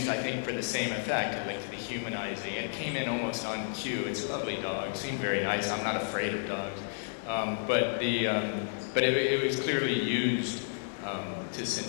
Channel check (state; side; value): silent; right; digital silence